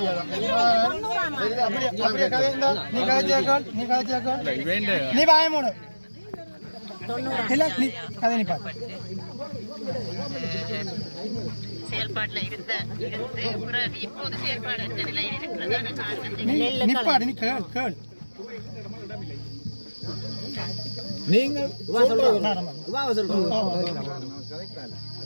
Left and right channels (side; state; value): both; inverted; correlation -1.00